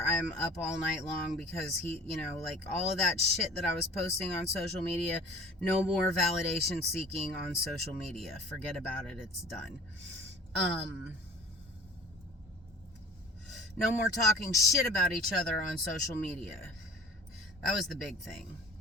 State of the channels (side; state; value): both; normal; correlation 0.45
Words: I'm up all night long because he, all of that shit that I was posting on social media, no more validation seeking on social media. Forget about it. It's done. No more talking shit about each other on social media. That was the big thing.